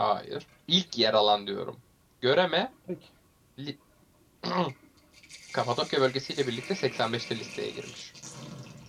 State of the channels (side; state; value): both; identical; correlation 1.00